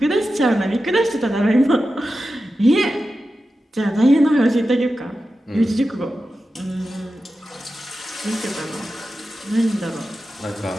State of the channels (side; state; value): both; normal; correlation 0.92